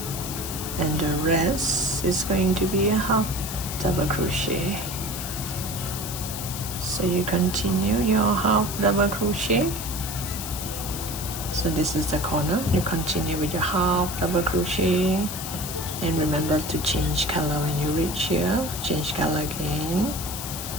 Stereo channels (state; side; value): noise; left; hiss, 7 dB below the sound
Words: and the rest is going to be a half double crochet. So you continue your half double crochet. So this is the corner. You continue with your half double crochet, and remember to change color when you reach here. Change color again,